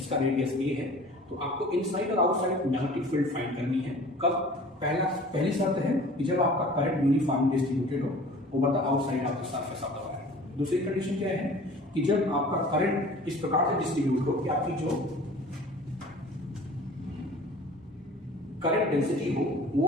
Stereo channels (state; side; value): normal; both; correlation 0.45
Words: रेडियस a है, तो आपको इनसाइड और आउटसाइड मैग्नेटिक फील्ड फाइंड करनी है। कब, पहली शर्त है कि जब आपका करंट यूनिफॉर्मली डिस्ट्रीब्यूटेड हो over the outside of the surface of the wire. दूसरी कंडीशन क्या है कि जब आपका करंट इस प्रकार से डिस्ट्रीब्यूट हो कि आपकी जो करंट डेंसिटी हो वो